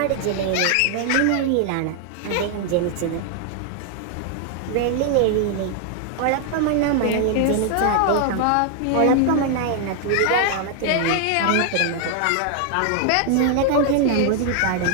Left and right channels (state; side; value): different; both; correlation 0.00